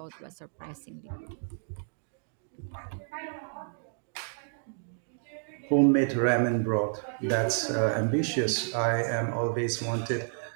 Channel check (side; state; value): left; silent; digital silence